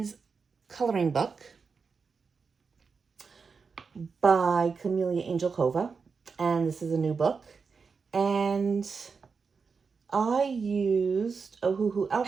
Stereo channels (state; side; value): quieter; left; 5.2 dB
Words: Coloring Book by Camellia Angel Cova. And this is a new book. And I used Ohuhu